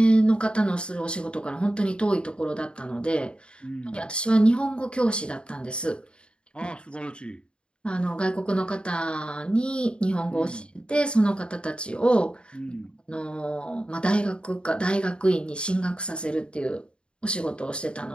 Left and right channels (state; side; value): late; right; 0.053 ms